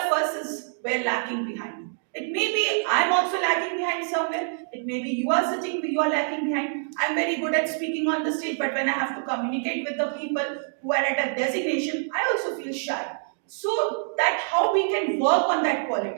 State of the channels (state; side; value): silent; left; digital silence